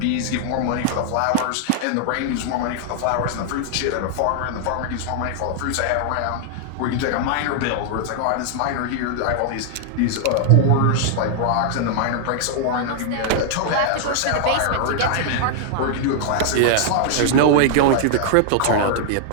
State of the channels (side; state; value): both; different; correlation 0.00